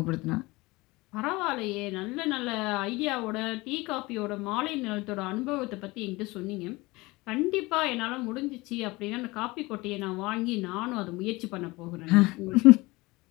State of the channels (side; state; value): right; quieter; 22.2 dB